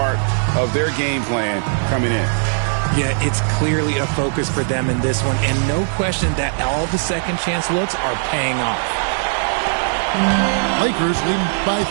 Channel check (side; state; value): left; silent; digital silence